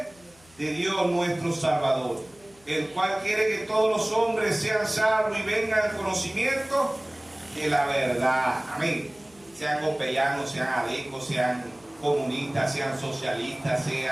de Dios nuestro Salvador, el cual quiere que todos los hombres sean salvos y vengan al conocimiento de la verdad. Amén. Sean copellanos, sean adecos, sean comunistas, sean socialistas,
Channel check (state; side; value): noise; left; hum, 29 dB below the sound